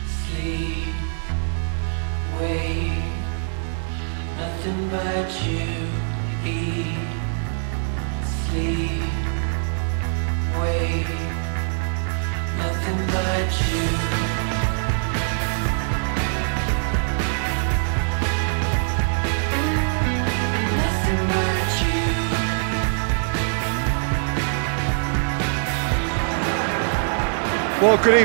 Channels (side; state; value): left; silent; 63 dB below the other